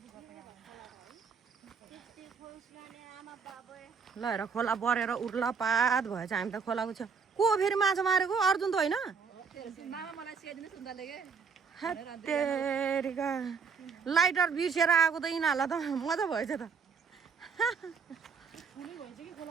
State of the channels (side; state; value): left; quieter; 5.7 dB